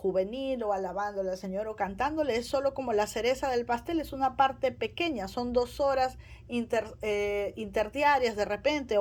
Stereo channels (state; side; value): identical; both; correlation 1.00